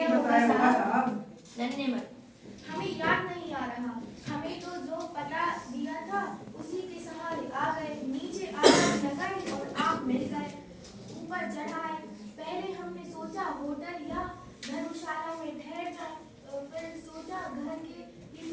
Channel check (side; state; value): both; identical; correlation 1.00